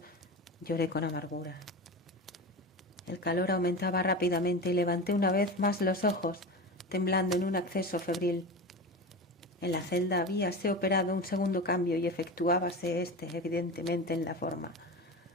lloré con amargura. El calor aumentaba rápidamente y levanté una vez más los ojos, temblando en un acceso febril. En la celda habíase operado un segundo cambio y efectuábase evidentemente en la forma.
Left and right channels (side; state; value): both; normal; correlation 0.26